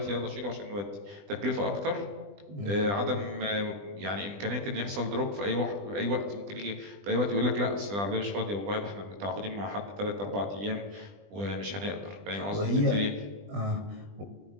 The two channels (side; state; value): left; late; 20 ms